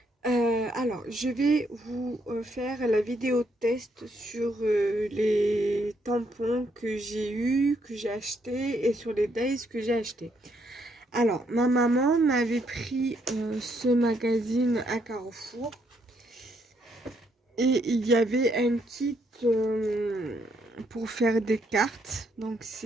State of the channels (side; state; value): both; normal; correlation 0.73